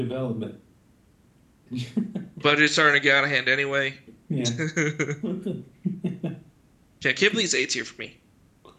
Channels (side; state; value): both; identical; correlation 1.00